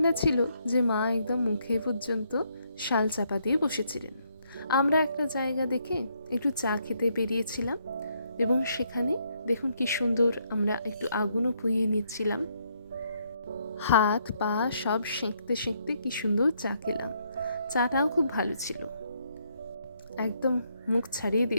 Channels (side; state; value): both; inverted; correlation -0.73